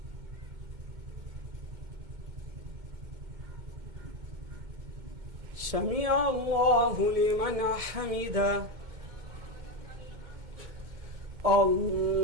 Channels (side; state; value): left; late; 2.2 ms